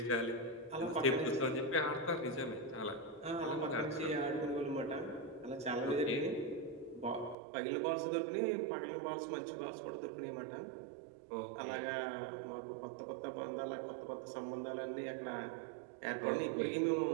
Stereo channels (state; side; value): drops out; left; at 7.4 s